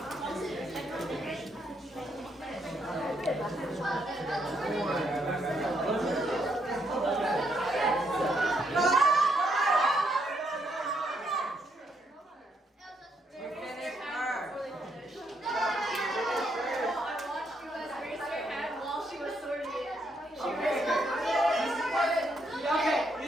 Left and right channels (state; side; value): normal; both; correlation 0.75